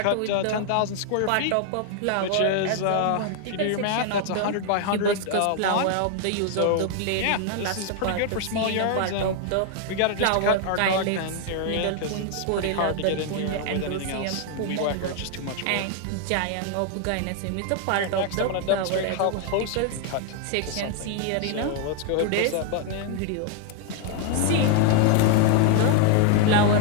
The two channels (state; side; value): different; both; correlation 0.00